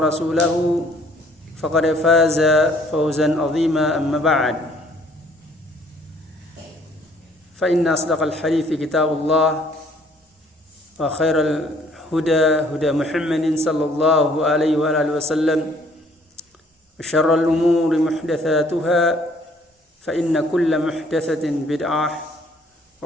فقد فاز فوزا عظيما أما بعد فإن أصدق الحديث كتاب الله وخير الهدى هدى محمد صلى الله عليه وآله وسلم وشر الأمور محدثاتها فإن كل محدثة بدعة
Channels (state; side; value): normal; both; correlation 0.60